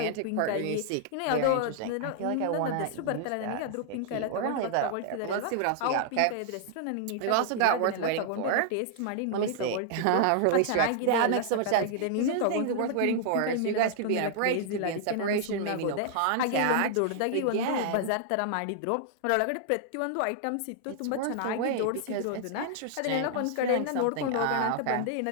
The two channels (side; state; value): both; different; correlation -0.01